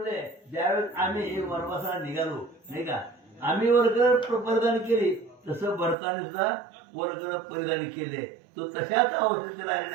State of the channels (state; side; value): drops out; left; at 6.0 s